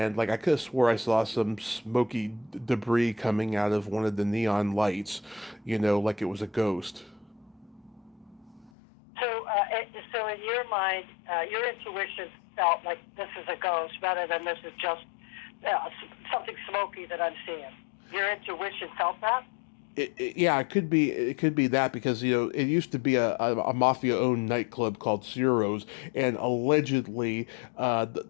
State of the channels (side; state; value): right; drops out; at 8.7 s